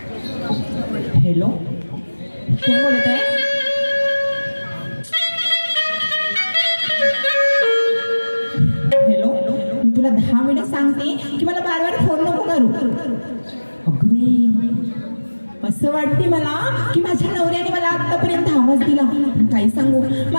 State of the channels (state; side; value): inverted; both; correlation -1.00